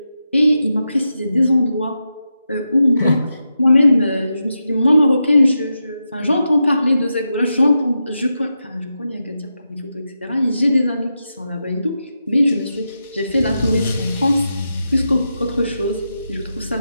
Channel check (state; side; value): inverted; both; correlation -0.87